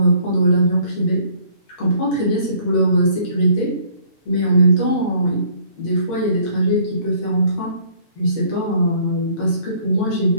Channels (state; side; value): late; right; 8.1 ms